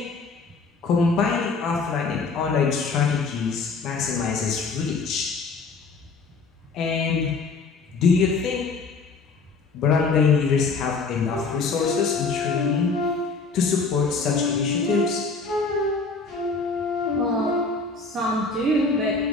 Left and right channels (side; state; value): right; quieter; 4.3 dB